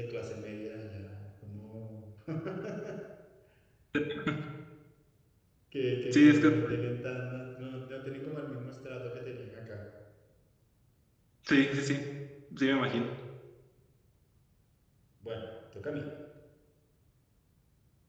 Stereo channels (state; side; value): identical; both; correlation 1.00